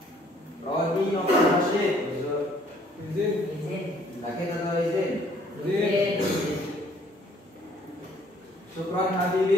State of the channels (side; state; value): both; normal; correlation 0.61